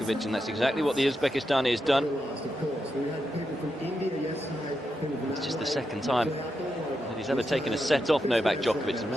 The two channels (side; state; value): both; normal; correlation 0.86